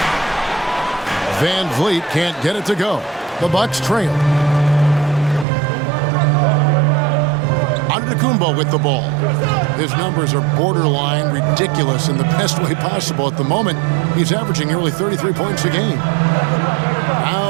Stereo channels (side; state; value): left; drops out; at 5.5 s